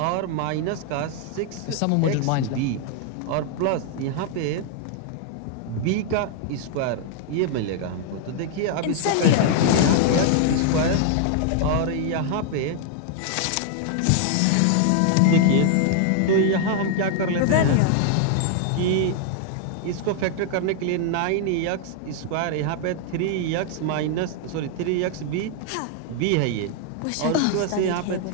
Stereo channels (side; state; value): both; different; correlation 0.00